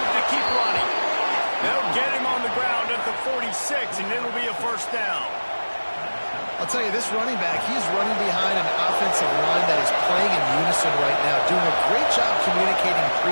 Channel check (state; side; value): inverted; both; correlation -1.00